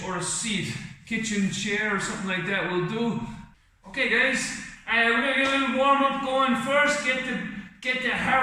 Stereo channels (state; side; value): identical; both; correlation 1.00